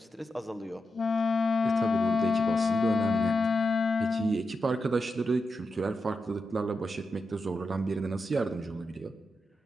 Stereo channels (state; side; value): normal; both; correlation 0.87